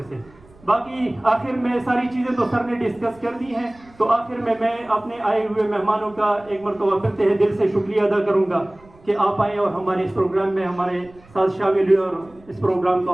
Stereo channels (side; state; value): right; noise; rumble, 27 dB below the sound